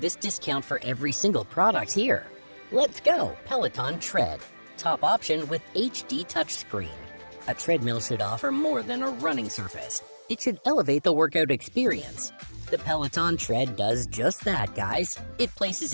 discount for every single product here. Let's go, Peloton Tread. Top option with HD touchscreen. A treadmill should offer more than a running surface. It should elevate the workout experience. The Peloton Tread does just that, guys. It places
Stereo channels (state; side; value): inverted; both; correlation -1.00